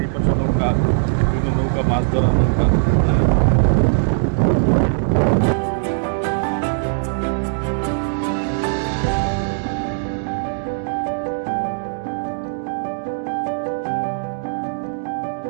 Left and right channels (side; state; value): left; silent; digital silence